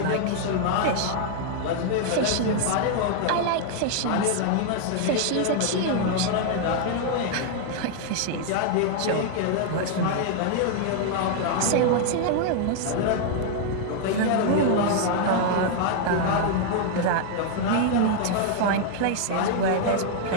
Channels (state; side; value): different; both; correlation 0.00